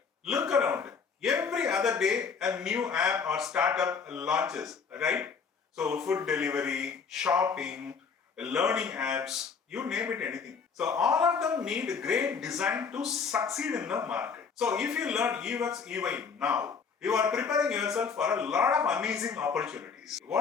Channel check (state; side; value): quieter; right; 5.7 dB